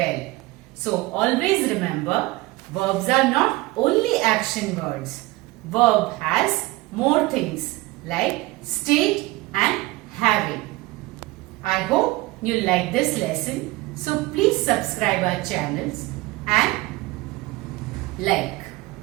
So, always remember, verbs are not only action words. Verb has more things like state and having. I hope you like this lesson. So please subscribe our channels and like.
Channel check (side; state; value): left; quieter; 20.7 dB